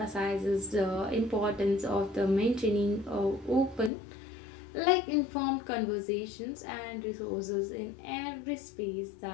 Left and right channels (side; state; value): right; drops out; at 3.9 s